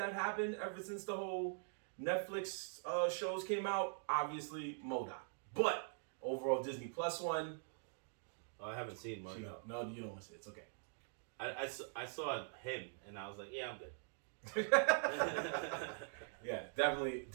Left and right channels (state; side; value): silent; left; digital silence